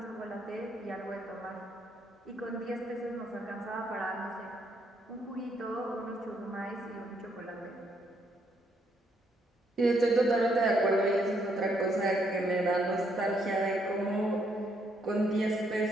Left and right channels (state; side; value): normal; both; correlation 0.73